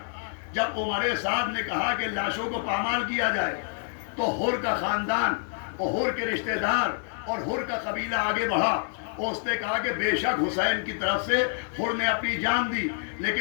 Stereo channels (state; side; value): silent; right; 60 dB below the other